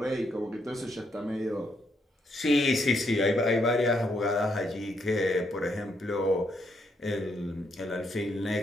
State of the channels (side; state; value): both; normal; correlation 0.76